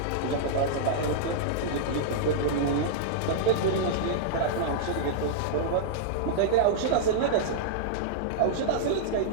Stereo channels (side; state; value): both; different; correlation -0.02